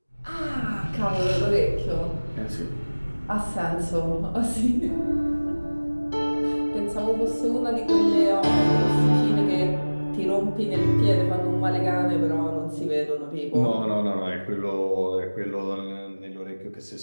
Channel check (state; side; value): inverted; both; correlation -1.00